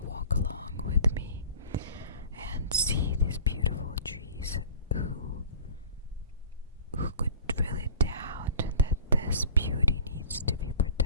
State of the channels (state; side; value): inverted; both; correlation -0.44